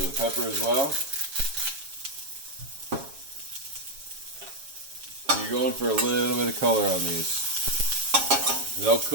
bit of pepper as well. And you're going for a little bit of color on these. They'll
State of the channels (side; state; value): left; late; 7.4 ms